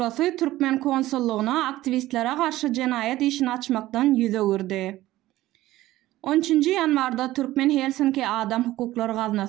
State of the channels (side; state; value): left; quieter; 16.0 dB